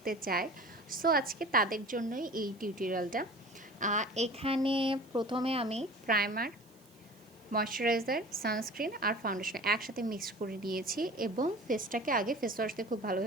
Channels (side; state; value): right; noise; hiss, 29 dB below the sound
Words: চায়। সো আজকে তাদের জন্যই এই টিউটোরিয়ালটা। এখানে প্রথমে আমি প্রাইমার, ময়শ্চারাইজার, সানস্ক্রিন আর ফাউন্ডেশন একসাথে মিক্স করে নিয়েছি এবং ফেসটাকে আগে ফেস ওয়াশ দিয়ে খুব